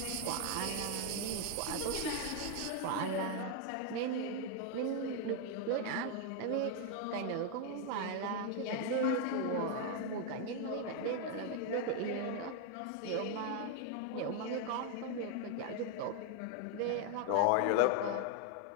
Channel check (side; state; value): both; different; correlation 0.01